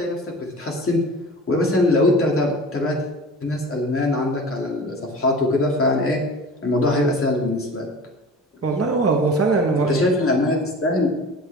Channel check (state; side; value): normal; both; correlation 0.38